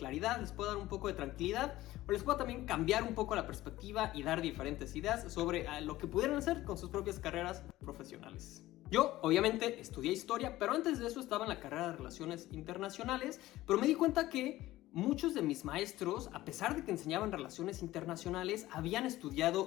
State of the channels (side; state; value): right; quieter; 16.4 dB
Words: les pueda dar un poco de tranquilidad o les pueda también cambiar un poco la perspectiva y dar diferentes ideas sobre lo que pudieran hacer con sus propias carreras profesionales. Yo, obviamente, estudié historia, pero antes de eso estaba en la carrera de Relaciones Internacionales, pero me di cuenta que muchos de mis maestros, a pesar de que enseñaban relaciones internacionales, habían